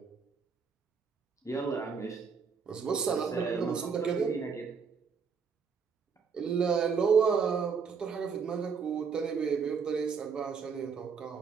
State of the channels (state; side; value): quieter; left; 5.9 dB